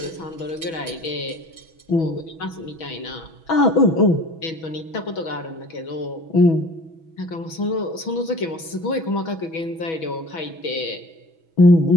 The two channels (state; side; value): late; right; 6.2 ms